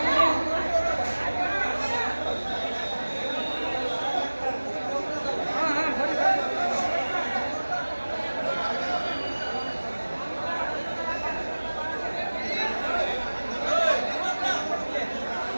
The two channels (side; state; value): both; inverted; correlation -1.00